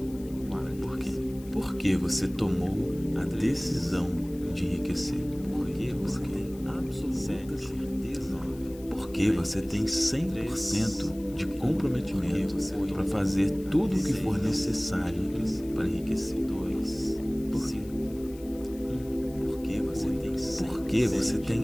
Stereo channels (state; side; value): noise; left; hiss, 22 dB below the sound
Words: Por quê? Porque você tomou a decisão de enriquecer. Porque você tem absoluta certeza. Porque você tem 100% de comprometimento para fazer tudo o que for necessário para enriquecer. Por quê? Porque você